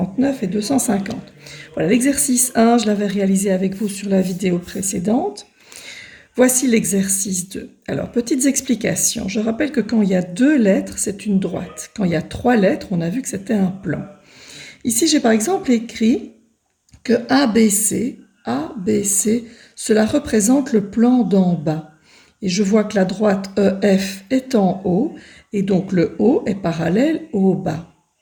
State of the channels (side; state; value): both; identical; correlation 1.00